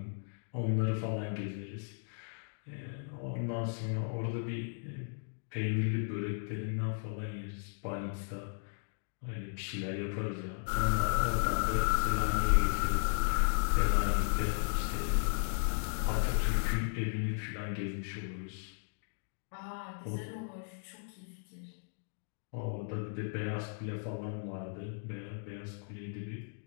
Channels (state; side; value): silent; right; digital silence